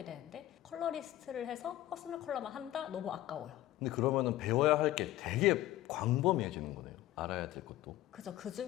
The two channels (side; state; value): right; quieter; 14.8 dB